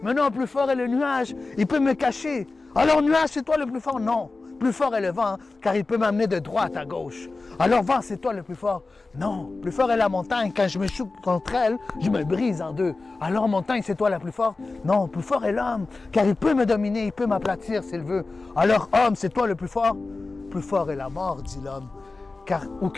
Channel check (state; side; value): quieter; right; 3.6 dB